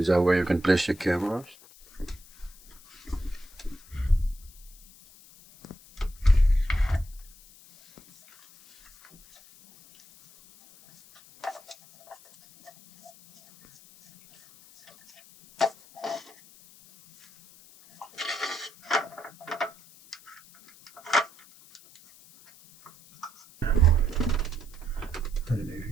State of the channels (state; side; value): noise; left; hiss, 24 dB below the sound